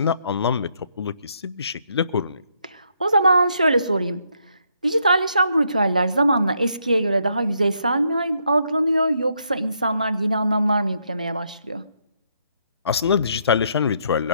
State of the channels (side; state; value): both; inverted; correlation -0.74